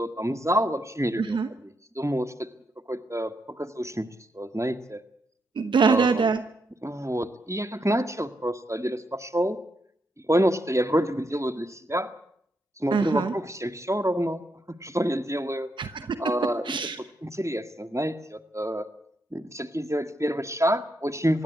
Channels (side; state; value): both; normal; correlation 0.80